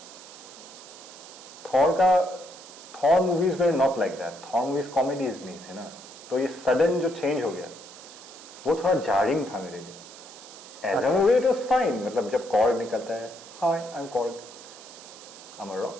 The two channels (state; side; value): noise; right; hiss, 17 dB below the sound